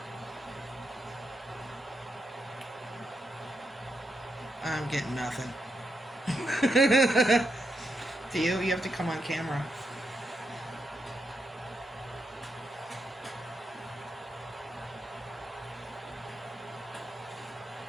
I'm getting nothing. Do you? You have to come on camera.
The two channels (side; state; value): both; normal; correlation 0.82